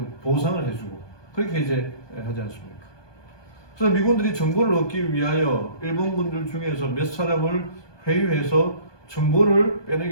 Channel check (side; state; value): right; late; 1.2 ms